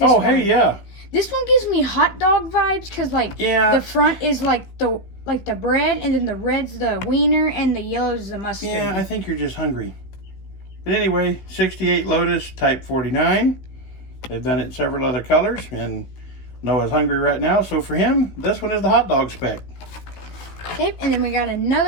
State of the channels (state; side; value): late; right; 15 ms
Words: Oh, hey, yeah. This one gives me hot dog vibes because, like, the front is like the bread, and then the red's the wiener, and the yellow's the mustard. Yeah, I think you're just hungry. But anyway, 68 Lotus Type 49. They've done it in several other colors, and Noah's hungry right now, so for him, this one is the hot dog spec. Okay, and then we got